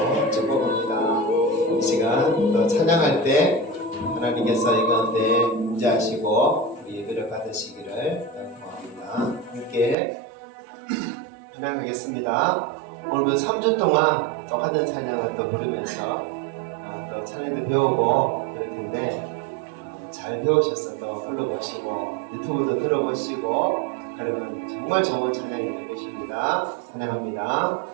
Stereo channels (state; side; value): drops out; left; at 10.0 s